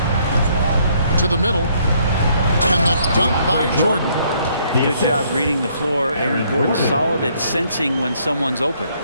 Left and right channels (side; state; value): both; inverted; correlation -0.67